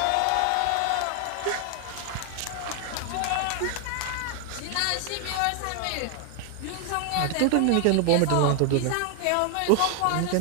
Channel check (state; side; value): different; both; correlation 0.00